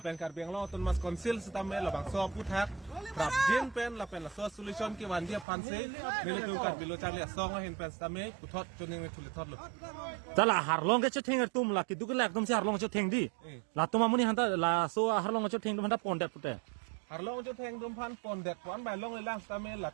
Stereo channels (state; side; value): drops out; left; at 5.5 s